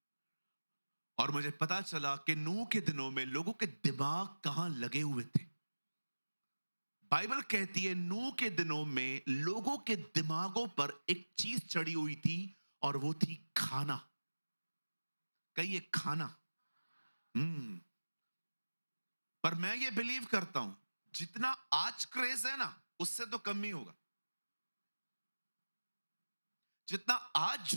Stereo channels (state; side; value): inverted; both; correlation -1.00